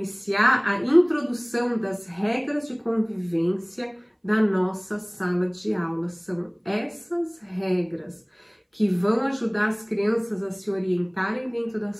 a introdução das regras de convivência da nossa sala de aula. São essas regras que vão ajudar as crianças a se orientarem dentro da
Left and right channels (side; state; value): both; identical; correlation 1.00